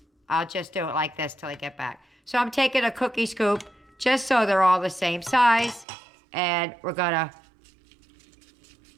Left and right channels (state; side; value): drops out; left; at 5.9 s